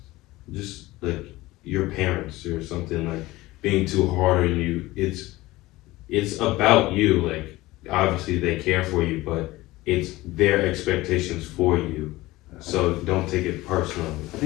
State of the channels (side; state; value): right; quieter; 18.9 dB